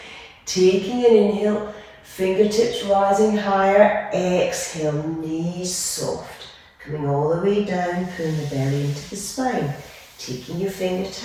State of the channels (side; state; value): both; identical; correlation 1.00